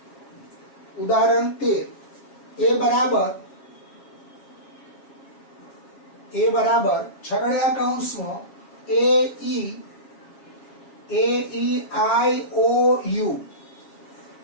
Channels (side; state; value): right; late; 7.4 ms